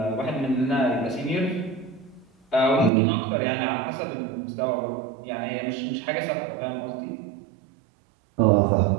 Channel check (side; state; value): left; drops out; at 2.9 s